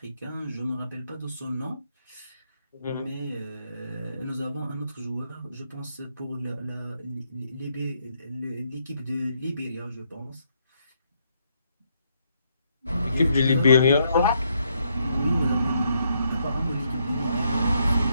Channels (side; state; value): both; inverted; correlation -0.75